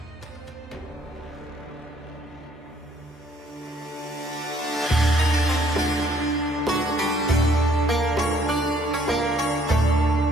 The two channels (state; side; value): normal; both; correlation 0.63